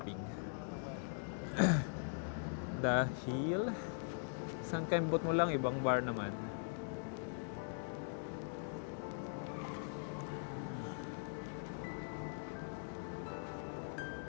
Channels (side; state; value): right; silent; digital silence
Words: Dahil isang kembot mo lang, ibang bar naman.